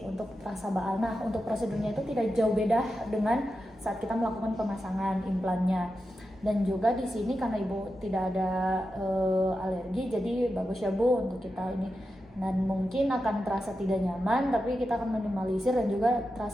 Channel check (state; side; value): normal; both; correlation 0.90